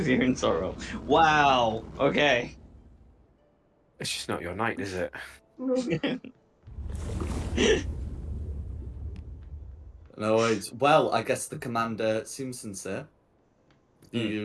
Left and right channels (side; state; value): both; identical; correlation 1.00